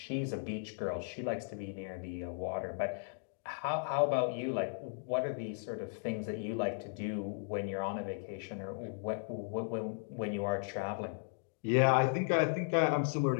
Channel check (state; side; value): silent; right; digital silence